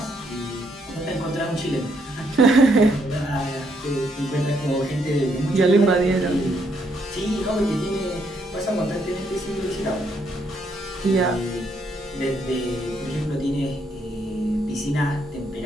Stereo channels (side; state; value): both; normal; correlation 0.73